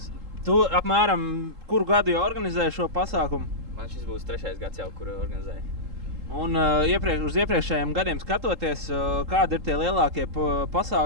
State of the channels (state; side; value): late; left; 3.7 ms